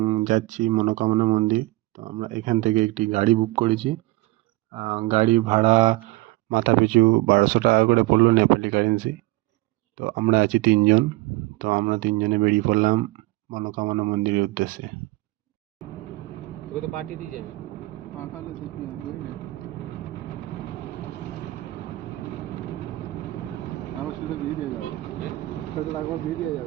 যাচ্ছি মনোকামনা মন্দির। তো আমরা এখান থেকে একটি গাড়ি বুক করেছি। গাড়ি ভাড়া মাথা পিছু 1200 টাকা করে পড়লো নেপালি কারেন্সি। তো আমরা আছি তিনজন। তো আমরা তিনজনে বেরিয়ে পড়লাম মনোকামনা মন্দিরের উদ্দেশ্যে। তোকে তো পাঠিয়ে দিয়ে যাবে। পাঠালে দেখি আবার সেটা দিয়ে দেওয়া যাবে, সেটা একবার দিয়ে দেওয়া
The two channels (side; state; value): left; quieter; 20.4 dB